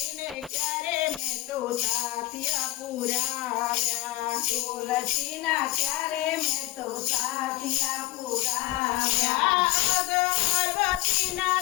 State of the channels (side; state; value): right; quieter; 18.8 dB